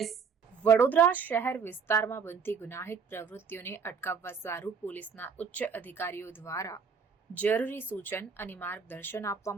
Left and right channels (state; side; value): quieter; left; 5.9 dB